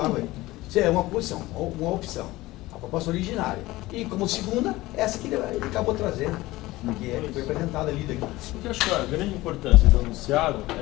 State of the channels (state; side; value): quieter; right; 18.7 dB